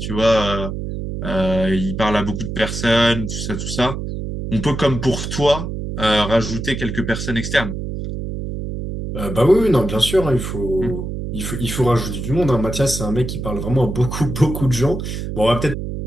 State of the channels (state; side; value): noise; right; hum, 5 dB below the sound